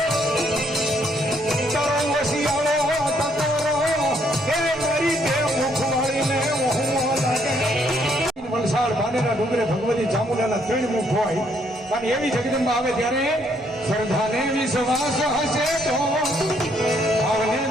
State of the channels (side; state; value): both; normal; correlation 0.70